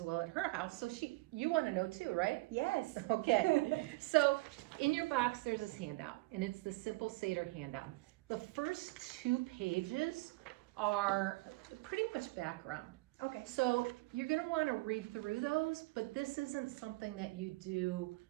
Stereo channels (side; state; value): left; quieter; 22.8 dB